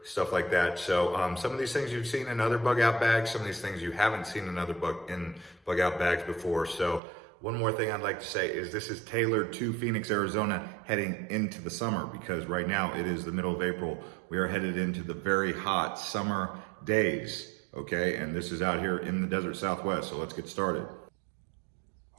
stuff like that. So some of these things you've seen in other bug out bags, some of these things you haven't seen in other bug out bags before. So one more thing I'd like to say is this is tailored to Phoenix, Arizona heading into the summer, because right now it is the middle of April. We are headed into the very hot summer days, okay? And this is out here in the desert Southwest, so let's get started.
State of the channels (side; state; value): left; drops out; at 7.0 s